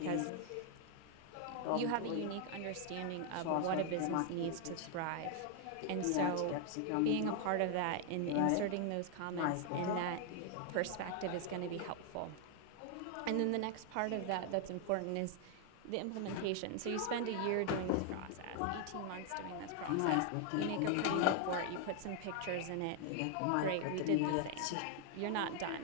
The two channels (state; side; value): different; both; correlation 0.00